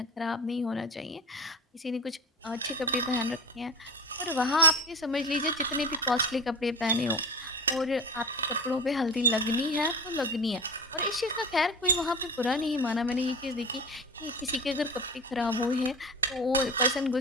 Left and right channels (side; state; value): both; normal; correlation 0.31